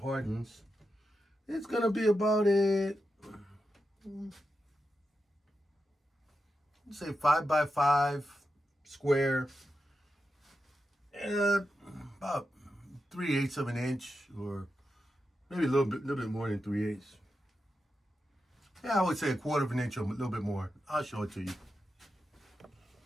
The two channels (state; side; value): normal; both; correlation 0.88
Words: It's gonna be about say 5 by 5 square, about 3/8 of an inch, or maybe a little bit more than 3/8. Yeah, I would say 1/4 of an inch or a little bit more. I'll show it to you.